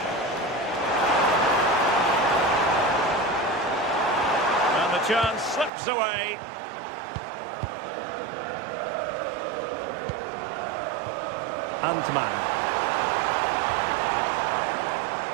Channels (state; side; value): drops out; left; at 5.7 s